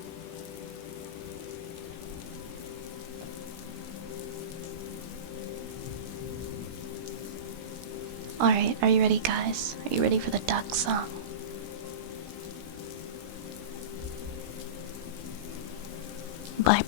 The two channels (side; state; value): left; late; 16 ms